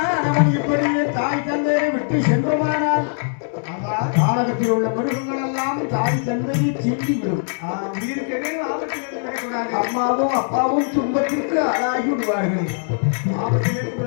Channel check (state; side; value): silent; right; 65 dB below the other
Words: அவன் இப்படியே தாய் தந்தையை விட்டு சென்றுமானால் காலகத்தில் உள்ள மிருகங்கள் எல்லாம் தாய் தந்தையை தீண்டிவிடும். அம்மாவும் அப்பாவும் துன்பத்திற்கு ஆளாகி விடுவார்கள்